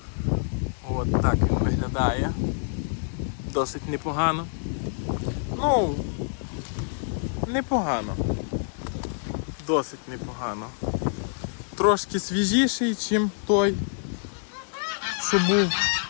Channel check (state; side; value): silent; right; digital silence